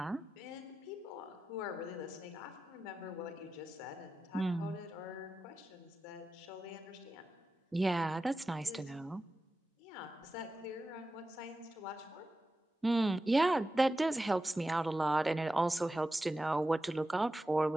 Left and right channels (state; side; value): normal; both; correlation 0.93